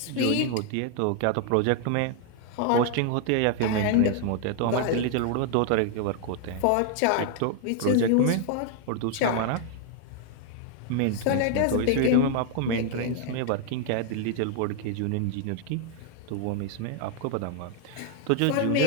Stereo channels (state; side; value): different; both; correlation 0.00